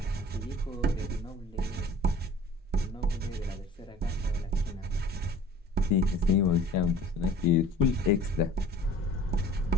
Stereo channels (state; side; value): normal; both; correlation 0.47